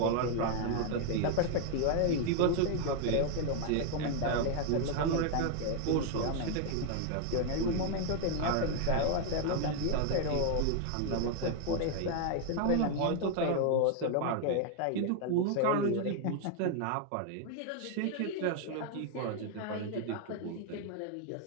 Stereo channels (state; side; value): different; both; correlation 0.00